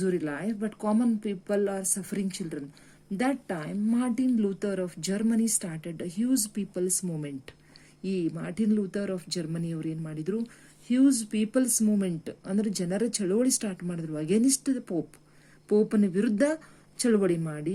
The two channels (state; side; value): identical; both; correlation 1.00